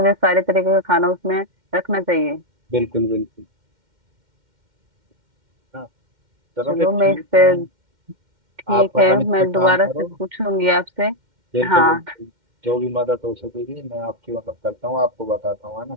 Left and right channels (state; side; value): late; left; 2.1 ms